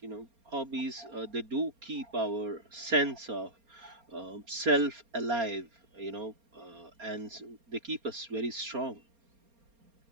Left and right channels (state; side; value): late; left; 4.3 ms